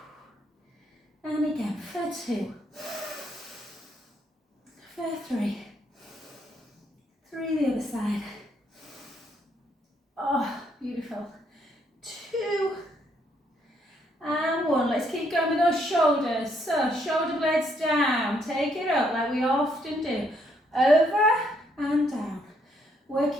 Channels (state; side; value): normal; both; correlation 0.72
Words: And again for 2. For 3. 3 the other side. Oh, beautiful. 2. And 1. Let's keep going with those shoulders. So shoulder blades down. Take it up like we often do. Over and down.